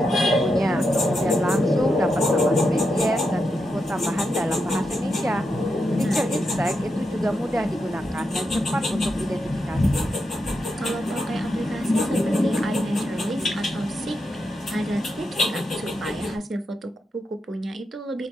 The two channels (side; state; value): both; normal; correlation 0.85